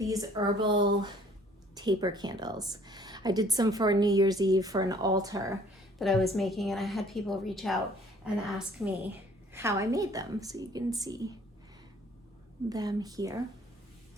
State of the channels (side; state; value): both; normal; correlation 0.56